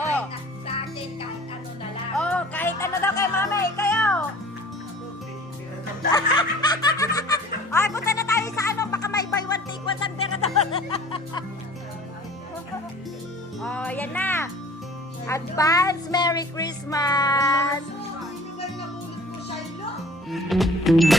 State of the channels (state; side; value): normal; both; correlation 0.47